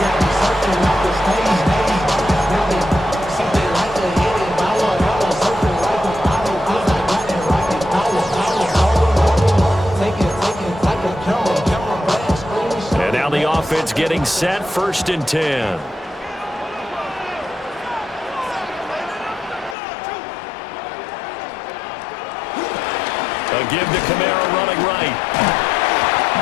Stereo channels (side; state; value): right; drops out; at 19.8 s